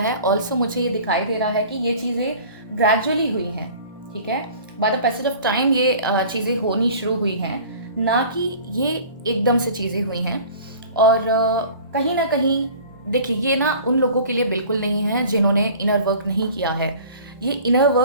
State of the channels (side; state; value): both; inverted; correlation -0.44